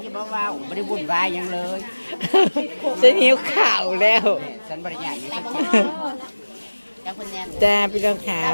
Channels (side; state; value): both; inverted; correlation -1.00